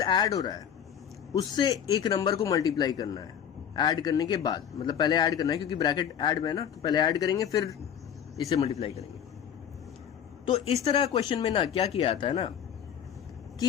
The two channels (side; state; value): right; quieter; 8.9 dB